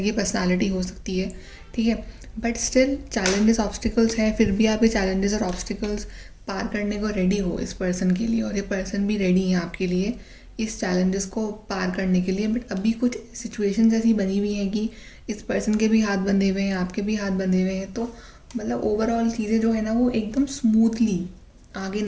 पर्सनालिटी हो सकती है। ठीक है, बट स्टिल चैलेंजेस ऑब्स्टिकल्स हैं, फिर भी आप ये चैलेंजेस और ऑब्स्टिकल्स पार करने को रेडी हो इस पर्सन के लिए, और ये पर्सन भी रेडी है आपके लिए इस चैलेंजेस को पार करने के लिए। बट अभी कुछ सिचुएशंस ऐसी बनी हुई हैं कि इस पर्सन के भी हाथ बंधे हुए हैं, आपके भी हाथ बंधे हुए हैं, तो मतलब ओवरऑल चीज़ें जो है ना वो एकदम स्मूथली आगे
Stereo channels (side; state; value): both; identical; correlation 1.00